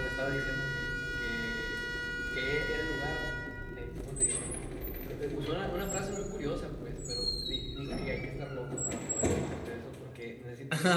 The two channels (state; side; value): identical; both; correlation 1.00